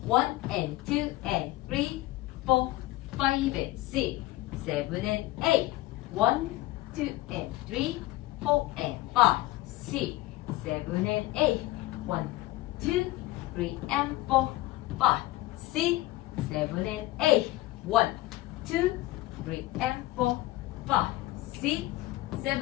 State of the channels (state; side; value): quieter; right; 18.0 dB